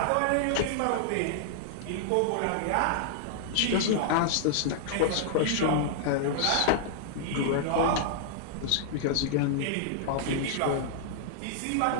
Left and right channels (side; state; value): both; different; correlation -0.01